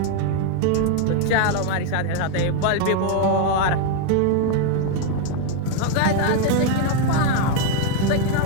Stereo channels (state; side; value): different; both; correlation 0.00